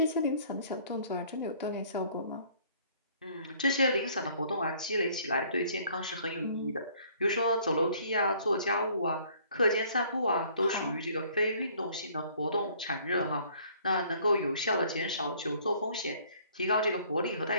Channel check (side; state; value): both; inverted; correlation -0.58